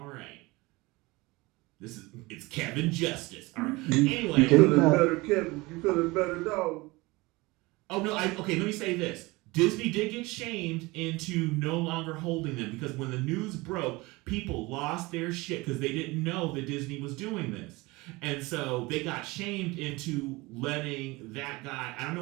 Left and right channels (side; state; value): left; quieter; 22.8 dB